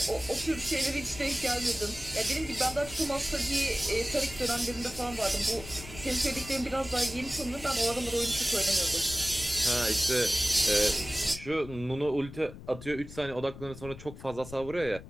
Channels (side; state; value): left; noise; rumble, 14 dB below the sound